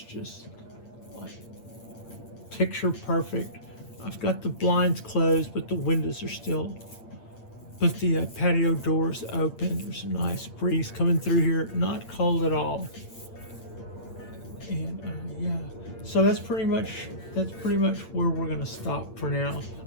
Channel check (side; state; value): right; late; 8.8 ms